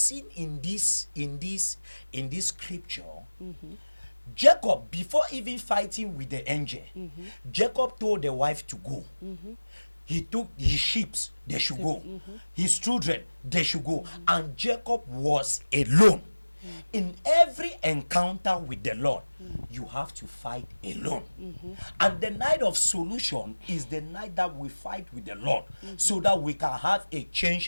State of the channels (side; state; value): both; inverted; correlation -1.00